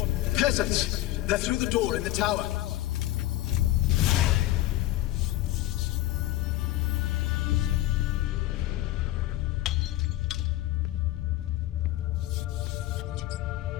peasants. They're through the door in the tower.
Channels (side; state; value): right; quieter; 15.6 dB